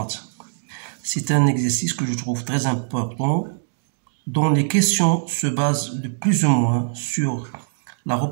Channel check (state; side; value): silent; left; digital silence